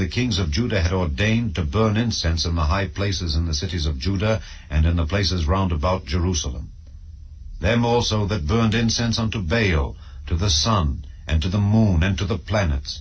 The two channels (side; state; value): both; identical; correlation 1.00